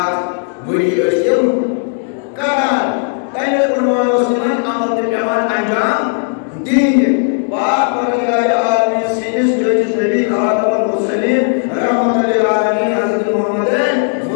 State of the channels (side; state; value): right; silent; 56 dB below the other